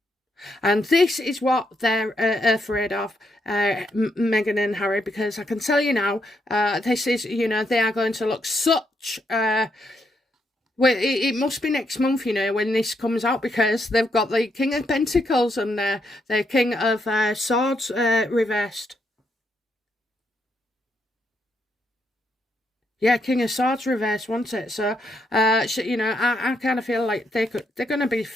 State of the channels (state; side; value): normal; both; correlation 0.78